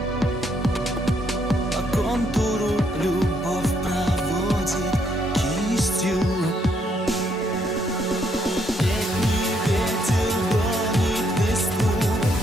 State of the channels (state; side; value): normal; both; correlation 0.72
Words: По контуру любовь проводит кистью. Летний ветер гонит листву